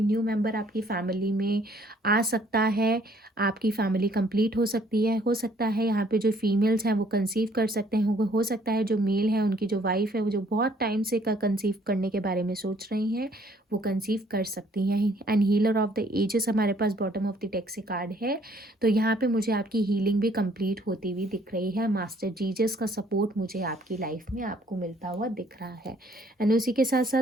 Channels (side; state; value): both; normal; correlation 0.62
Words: न्यू मेंबर आपकी फैमिली में आ सकता है, आपकी फैमिली कंप्लीट हो सकती है। हो सकता है यहाँ पे जो फीमेल्स हैं वो कंसीव कर सकते हैं। हो सकता है जो मेल है, उनकी जो वाइफ है, वो जो बहुत टाइम से कंसीव करने के बारे में सोच रही हैं, वो कंसीव कर सकती हैं। And healer of the ages हमारे पास बॉटम ऑफ द डेक से कार्ड है। तो यहाँ पे मुझे आपकी हीलिंग भी कंप्लीट होती हुई दिख रही है। मास्टर जीजस का सपोर्ट मुझे आपकी लाइफ में आपको मिलता हुआ दिख रहा है। एंड उसी के साथ साथ